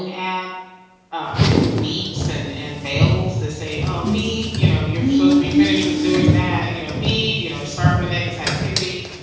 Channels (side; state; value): both; identical; correlation 1.00